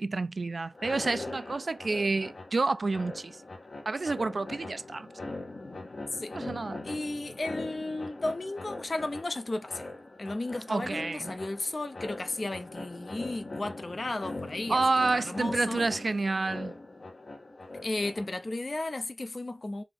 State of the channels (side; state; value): both; normal; correlation 0.95